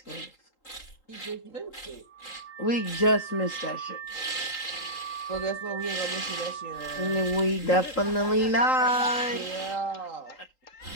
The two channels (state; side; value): late; right; 3.8 ms